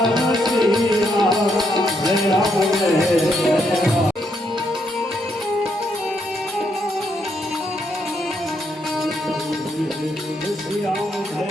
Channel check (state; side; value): normal; both; correlation 0.76